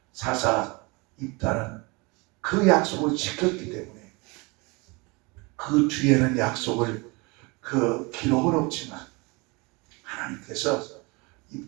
사사 입다는 그 약속을 지켰기 때문에 그 뒤에는 약속을 그 기록은 없지만 하나님께서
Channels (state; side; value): quieter; left; 26.9 dB